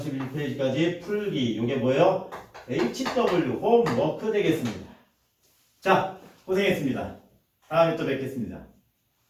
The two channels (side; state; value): both; identical; correlation 1.00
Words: 풀기. 이게 뭐예요? HW 홈워크 되겠습니다. 자, 고생했습니다. 다음에 또 뵙겠습니다.